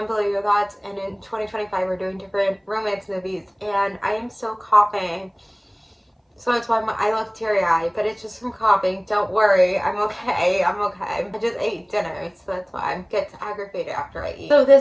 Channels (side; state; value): both; identical; correlation 1.00